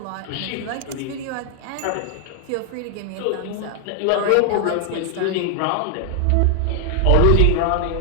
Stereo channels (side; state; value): both; different; correlation 0.00